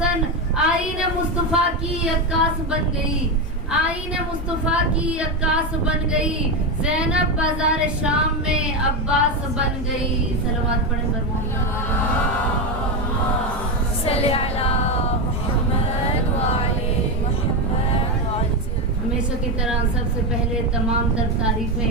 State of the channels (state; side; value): normal; both; correlation 0.12